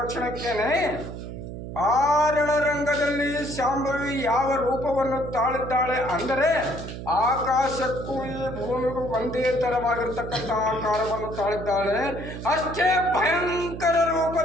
ಕ್ಷಣಕ್ಕೇನೆ ಆ ರಣರಂಗದಲ್ಲಿ ಶಾಂಭವಿ ಯಾವ ರೂಪವನ್ನು ತಾಳಿದ್ದಾಳೆ ಅಂದರೆ ಆಕಾಶಕ್ಕೂ ಈ ಭೂಮಿಗೂ ಒಂದೇ ಥರವಾಗಿರ್ತಕ್ಕಂಥ ಆಕಾರವನ್ನು ತಾಳಿದ್ದಾಳೆ. ಅಷ್ಟೇ ಭಯಂಕರ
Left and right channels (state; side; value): noise; right; hum, 9 dB below the sound